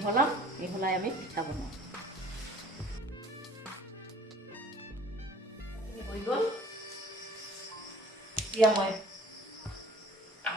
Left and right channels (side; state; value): both; normal; correlation 0.51